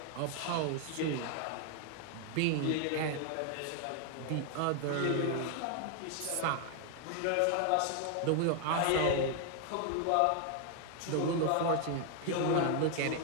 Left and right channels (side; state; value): both; different; correlation 0.00